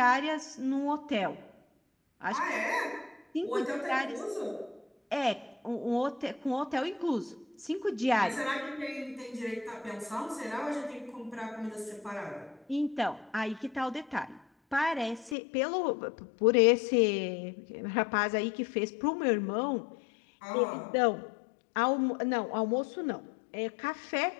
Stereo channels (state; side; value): drops out; right; at 15.4 s